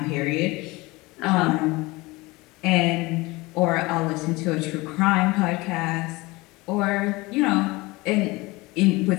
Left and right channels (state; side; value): quieter; right; 22.6 dB